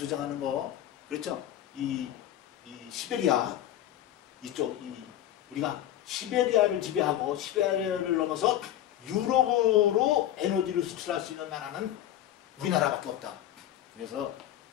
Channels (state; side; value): quieter; right; 12.2 dB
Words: 거, 그렇죠? 이 시베리아 이쪽, 우리가 시베리아를 지배하고 시베리아를 넘어서 유럽으로 에너지를 수출할 수 있는 나라는 우리나라밖에 없다. 그래서